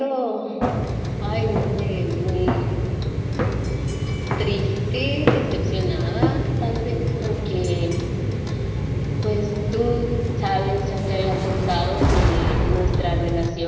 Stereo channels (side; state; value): both; identical; correlation 1.00